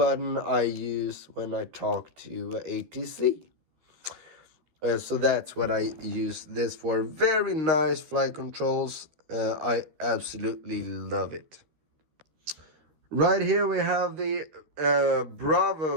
I use when I talk to ATC. So that's what I use this for. Very nice flight controls. I absolutely love it. Right here we have the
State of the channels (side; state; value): left; late; 13 ms